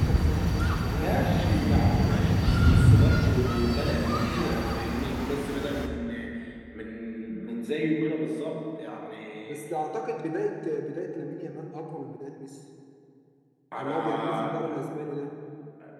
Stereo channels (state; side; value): identical; both; correlation 1.00